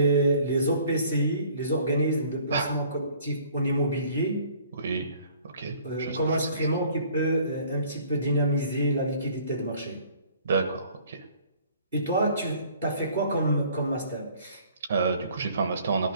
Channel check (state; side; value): inverted; both; correlation -0.55